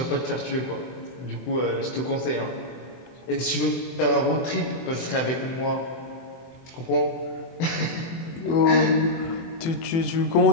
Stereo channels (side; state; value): right; late; 24 ms